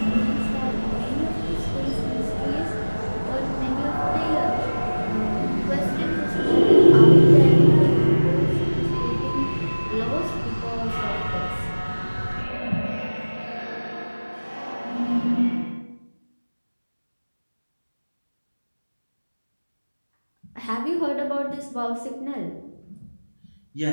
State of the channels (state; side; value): inverted; both; correlation -1.00